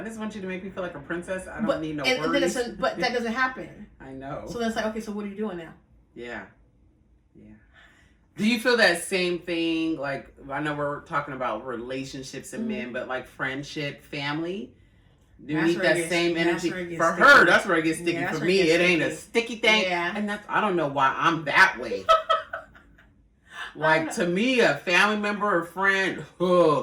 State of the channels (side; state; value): both; identical; correlation 1.00